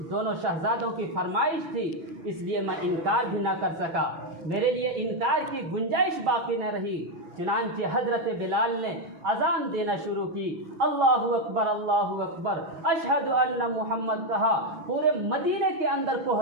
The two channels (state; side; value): late; left; 6.0 ms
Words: دونوں شہزادوں کی فرمائش تھی اس لیے میں انکار بھی نہ کر سکا، میرے لیے انکار کی گنجائش باقی نہ رہی۔ چنانچہ حضرت بلال نے اذان دینا شروع کی، اللہ اکبر اللہ اکبر اشہد ان محمد کہا۔ پورے مدینے کے اندر